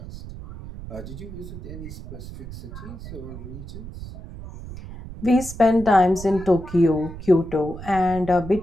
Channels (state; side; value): noise; right; rumble, 12 dB below the sound